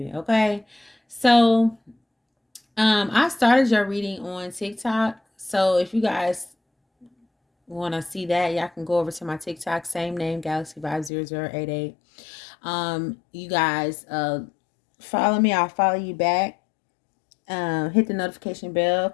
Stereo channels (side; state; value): right; drops out; at 11.1 s